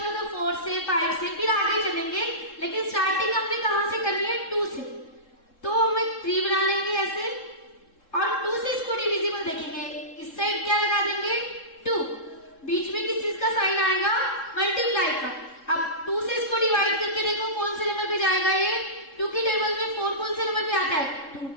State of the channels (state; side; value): late; right; 3.7 ms